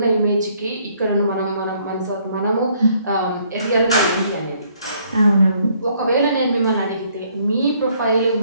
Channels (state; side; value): inverted; both; correlation -0.66